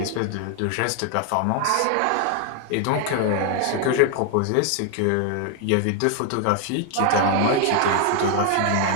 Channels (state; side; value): different; both; correlation 0.00